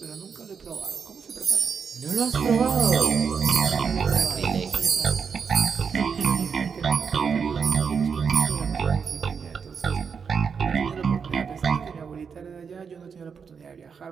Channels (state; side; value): quieter; left; 6.2 dB